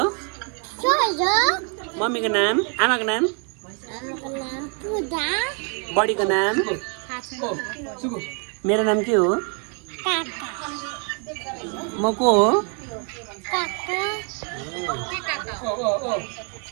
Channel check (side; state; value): left; quieter; 37.8 dB